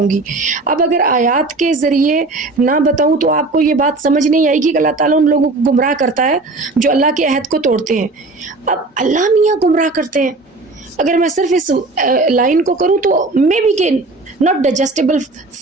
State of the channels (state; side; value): quieter; left; 3.3 dB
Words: گی، اب اگر آیات کے ذریعے نہ بتاؤں تو آپ کو یہ بات سمجھ نہیں آئے گی کہ اللہ تعالیٰ ان لوگوں کو گمراہ کرتا ہے جو اللہ کے عہد کو توڑتے ہیں۔ اب اللہ میاں گمراہ کرتے ہیں، اگر میں صرف اس لائن کو کروں تو مے بی کہ not digestible